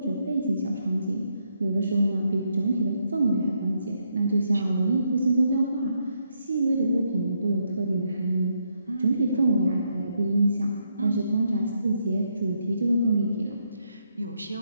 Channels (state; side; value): inverted; both; correlation -0.77